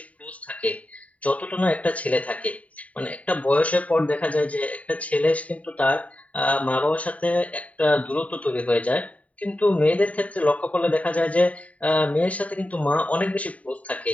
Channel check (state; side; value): late; right; 0.068 ms